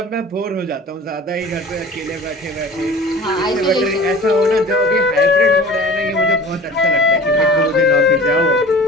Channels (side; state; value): both; normal; correlation 0.41